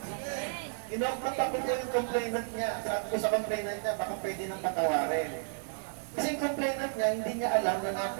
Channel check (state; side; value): silent; left; digital silence